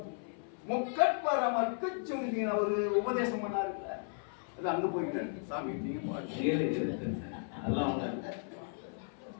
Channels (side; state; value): right; silent; 54 dB below the other